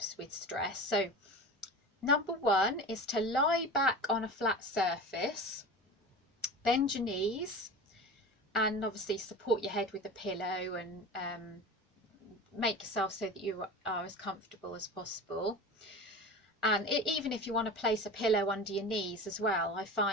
with stress. So number 1 is to lie back on a flat surface, bend your knees, and obviously support your head with a pillow, and make yourself so that you are as comfortable as possible. And even if you want to place a pillow under your knees as well, I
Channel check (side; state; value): both; normal; correlation 0.32